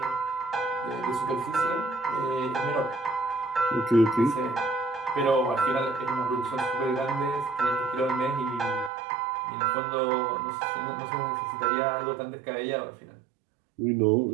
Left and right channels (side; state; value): left; drops out; at 8.9 s